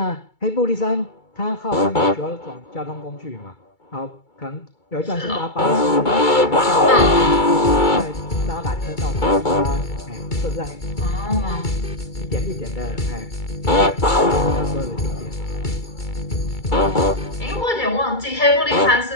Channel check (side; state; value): right; late; 2.3 ms